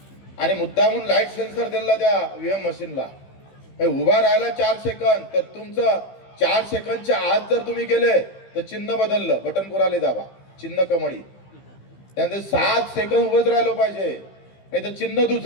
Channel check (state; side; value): late; right; 15 ms